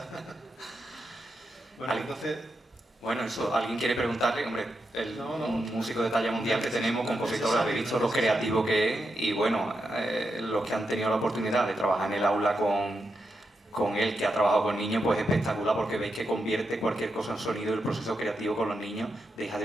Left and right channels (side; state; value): both; normal; correlation 0.86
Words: Bueno, entonces... Bueno, eso, alguien quiere preguntarle, hombre, un músico de talla mundial que tenemos, compositor, habéis visto lo creativo que es y bueno, los que han tenido la oportunidad de trabajar en el aula con con él, que ha trabajado con niños, pues es espectacular porque veis que convierte cualquier cosa en sonido y el proceso creativo con los niños deja